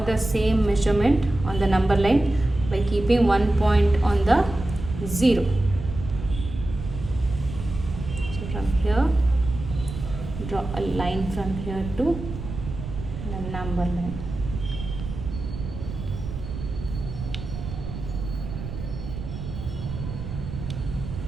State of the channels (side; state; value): right; noise; rumble, 8 dB below the sound